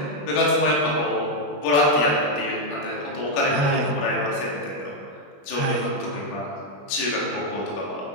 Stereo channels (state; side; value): late; right; 21 ms